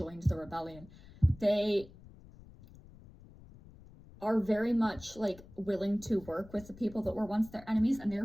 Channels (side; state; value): left; noise; rumble, 21 dB below the sound